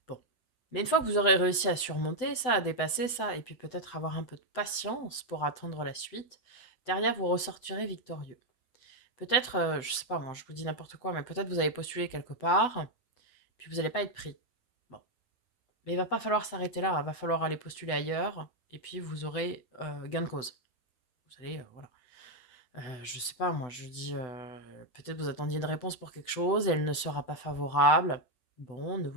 Bon. Mais une fois que vous aurez réussi à surmonter ça, à dépasser ça, et puis peut-être avoir un peu de patience pour attendre la suite, derrière vous ressortirez victorieux. Peut-être, je sais pas moi, je vous dis n'importe quoi, mais peut-être vous avez postulé quelque part, puis vous n'allez pas être pris. Bon. Mais il va pas falloir s'arrêter là, il va falloir aller postuler ailleurs, et puis vous aurez gain de cause. Vous allez, voilà. Je sais pas moi, je dis, peut-être vous attendiez une réponse pour quelque chose et elle ne sera pas favorable. Bon, ne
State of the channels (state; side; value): late; right; 8.0 ms